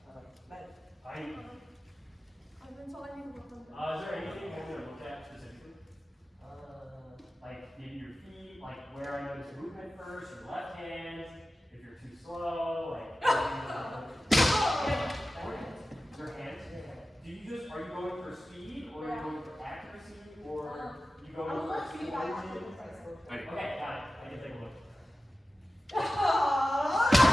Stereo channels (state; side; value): normal; both; correlation 0.94